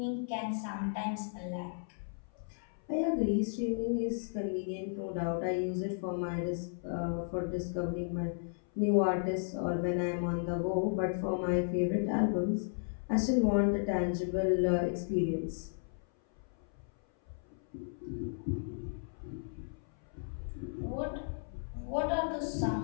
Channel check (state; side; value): silent; right; 55 dB below the other